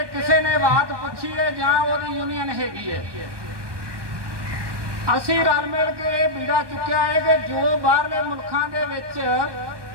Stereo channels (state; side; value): late; left; 1.2 ms